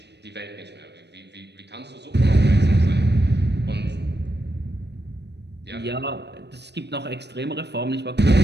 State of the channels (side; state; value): left; late; 0.50 ms